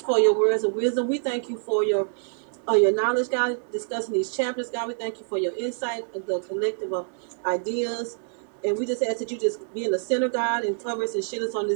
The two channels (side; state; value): left; silent; 61 dB below the other